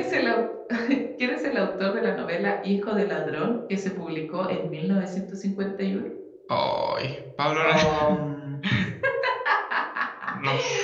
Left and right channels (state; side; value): identical; both; correlation 1.00